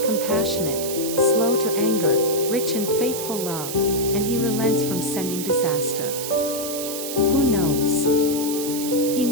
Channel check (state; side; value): noise; right; hiss, 7 dB below the sound